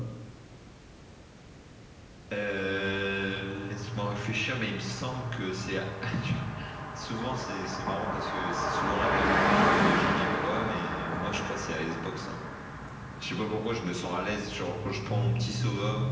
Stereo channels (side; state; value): both; identical; correlation 1.00